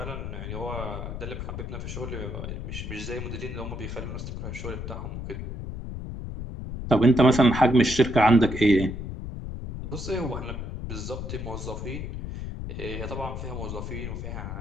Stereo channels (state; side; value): noise; left; rumble, 6 dB below the sound